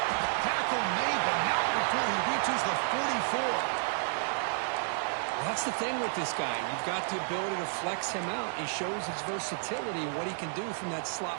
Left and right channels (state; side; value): silent; left; digital silence